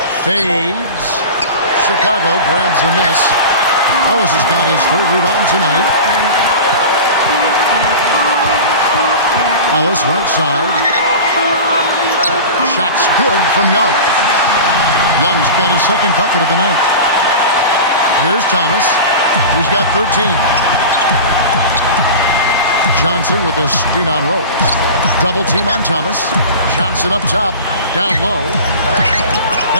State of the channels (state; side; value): inverted; both; correlation -0.32